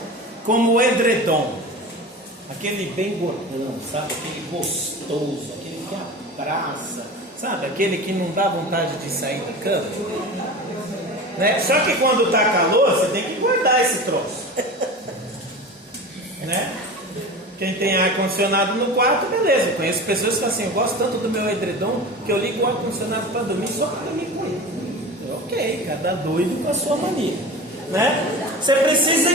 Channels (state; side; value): normal; both; correlation 0.32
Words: como o edredom. Aquele bem gordão, sabe? Aquele gostoso, aquele que abraça, sabe? Aquele que não dá vontade de sair da cama. Né? Só que quando está calor, você tem que guardar esse troço. Né? Quem tem ar-condicionado no quarto, beleza. Eu conheço pessoas que assim, eu gosto tanto do meu edredom que eu ligo o ar-condicionado para dormir só para dormir com ele. Ok, cada doido com a sua mania. Né? Você precisa